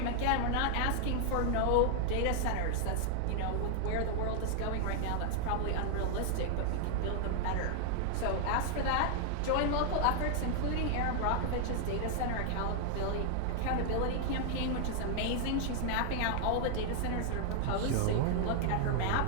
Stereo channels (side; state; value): both; different; correlation 0.00